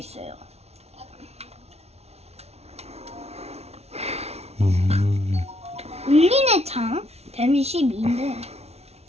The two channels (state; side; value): late; left; 0.31 ms